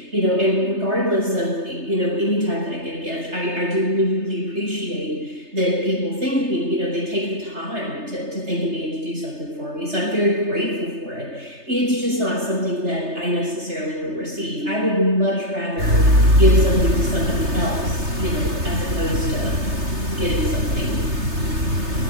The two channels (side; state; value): left; late; 3.3 ms